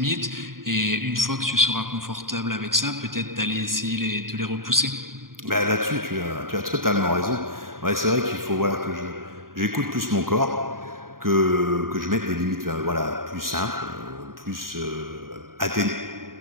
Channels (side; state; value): left; late; 0.91 ms